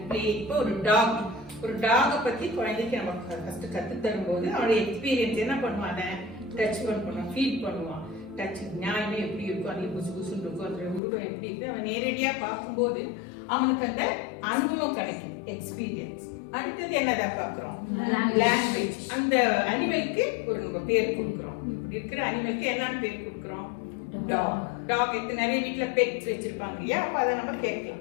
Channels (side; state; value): right; drops out; at 11.0 s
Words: playing. இப்போ ஒரு டாக பத்தி குழந்தைக்கு நம்ம ஃபர்ஸ்ட் கத்து தரும்போது அவனுடைய எக்ஸ்பீரியன்ஸ் என்ன பண்ணுவான்? டச் பண்ணுவான், ஃபீல் பண்ணுவான். டச் நியாயமே எப்படி இருக்கும், அது புசு புசுன்னு இருக்கும், அதோட உருவம் எப்படி இருக்கு, அவன் நேரடியா பார்க்கும்போது அவனுக்கு அந்த அனுபவம் கிடைக்கும், எக்ஸ்பீரியன்ஸ். அடுத்தது என்னதான் பாக்குறோம்? லாங்குவேஜ். அந்த அனிமலுக்கு ஒரு நம்ம பேர் கொடுக்குறோம். இப்படி இருக்கிற அனிமலுக்கு என்னன்னு பேர் கொடுக்குறோம்? டாக். நிறைய வீட்டுல பெட்ஸ் வச்சிருப்பாங்க இல்லையா? அப்ப அதை நம்ம